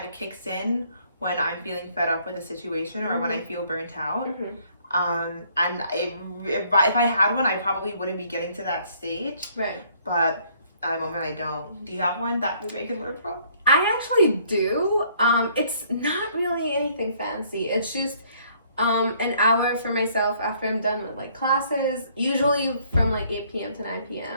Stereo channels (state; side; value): inverted; both; correlation -0.63